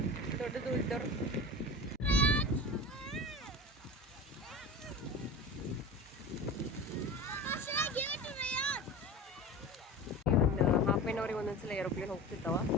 ದೊಡ್ಡದು ಇದ್ದವ್ರು. ಹಾಫ್ ಆನ್ ಅವರಿಗೆ ಒಂದೊಂದ್ಸಲ ಏರೋಪ್ಲೇನ್ ಹೋಗ್ತಿರ್ತಾವ.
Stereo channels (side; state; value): both; normal; correlation 0.31